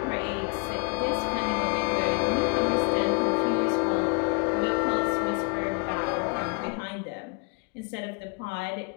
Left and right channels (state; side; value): quieter; right; 33.9 dB